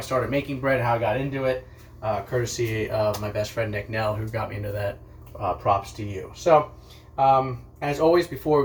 started making bread, how I got into it. Courtesy of my best friend Nick Nell, who got me into that. Props to you. So, as always, before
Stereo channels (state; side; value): identical; both; correlation 1.00